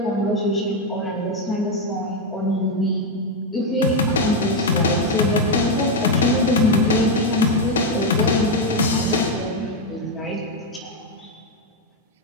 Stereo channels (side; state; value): both; normal; correlation 0.04